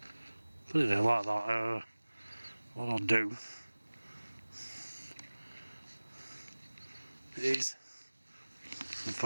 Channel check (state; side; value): inverted; both; correlation -1.00